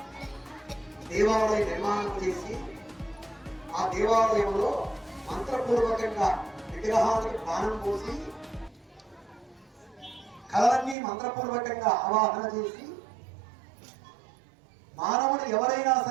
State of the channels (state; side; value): drops out; left; at 11.0 s